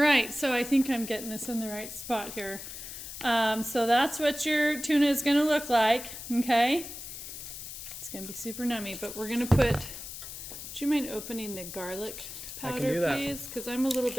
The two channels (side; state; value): left; noise; hiss, 10 dB below the sound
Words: so I think I'm getting this in the right spot here. So that's what your tuna is going to look like, okay? It's going to be super nummy, but we're going to put... Would you mind opening the garlic I can powder, do that. please? Because I'm a little